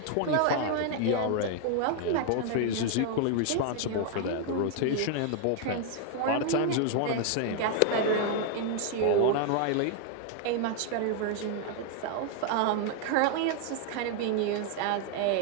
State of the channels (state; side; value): different; both; correlation 0.00